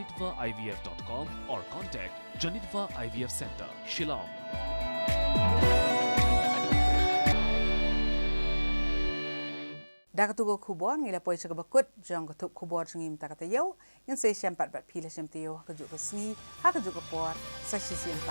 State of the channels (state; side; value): inverted; both; correlation -1.00